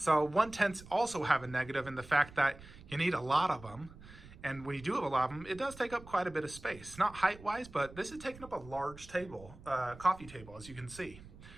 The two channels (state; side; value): noise; right; rumble, 18 dB below the sound